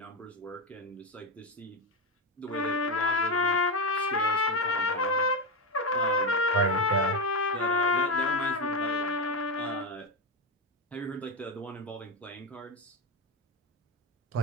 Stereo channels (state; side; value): normal; both; correlation 0.11